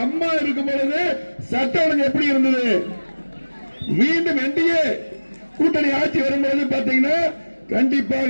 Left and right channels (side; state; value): both; inverted; correlation -1.00